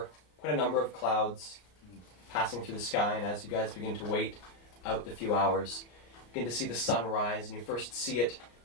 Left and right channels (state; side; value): late; right; 33 ms